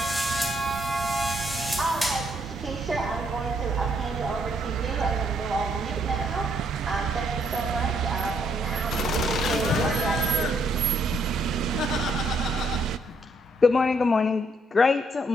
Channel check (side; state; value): both; normal; correlation 0.71